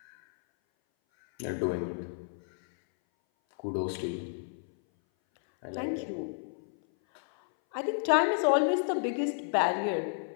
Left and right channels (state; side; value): silent; right; 57 dB below the other